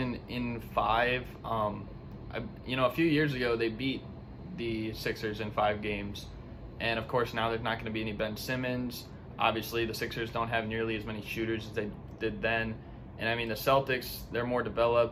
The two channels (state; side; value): identical; both; correlation 1.00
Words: in 5. A few years ago they beat the Sixers in 5 games, and of course now there's not going to be any Ben Simmons. Obviously, the Sixers don't have nearly as many shooters as they did then. And I mean, the Celtics, they're more